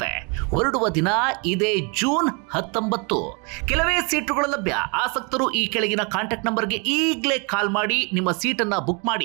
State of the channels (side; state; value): left; quieter; 32.8 dB